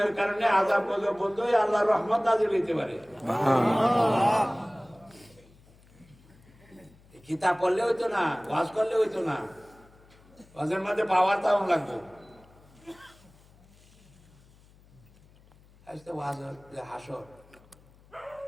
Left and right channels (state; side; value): noise; left; hum, 27 dB below the sound